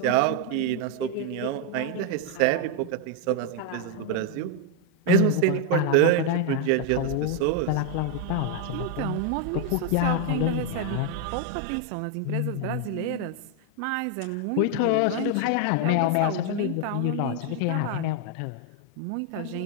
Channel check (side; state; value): both; different; correlation 0.01